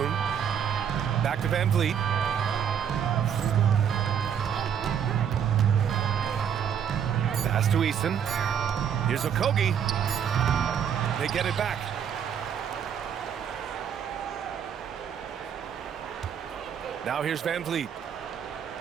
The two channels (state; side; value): quieter; left; 8.2 dB